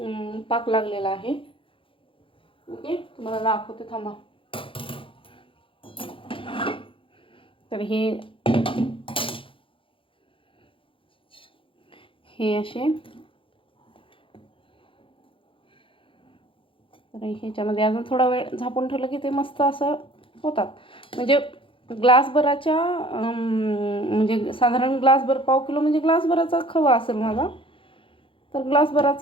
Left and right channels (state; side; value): late; right; 0.25 ms